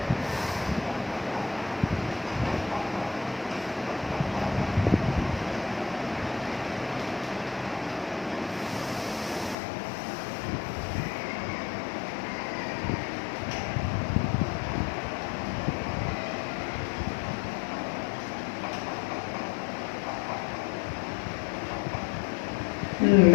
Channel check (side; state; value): right; drops out; at 9.6 s